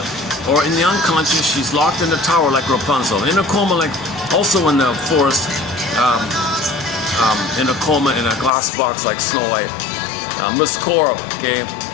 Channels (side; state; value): right; drops out; at 8.5 s